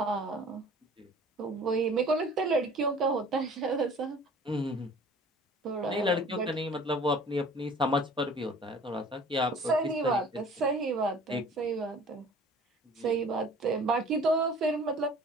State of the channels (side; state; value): both; normal; correlation 0.48